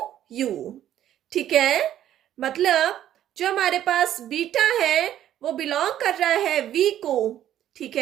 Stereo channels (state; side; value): quieter; left; 11.6 dB